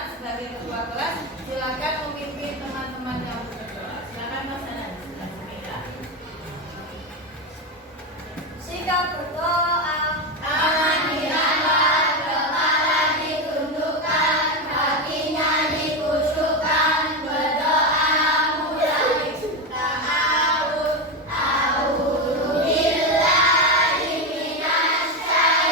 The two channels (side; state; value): both; normal; correlation 0.13